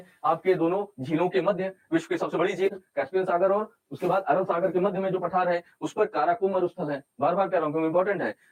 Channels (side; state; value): both; identical; correlation 1.00